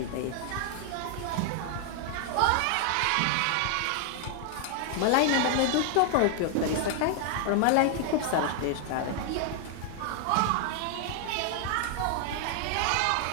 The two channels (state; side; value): different; both; correlation 0.00